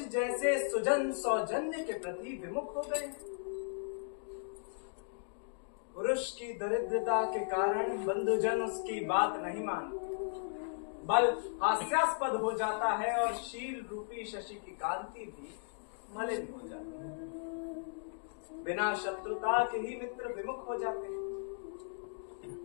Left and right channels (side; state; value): right; silent; digital silence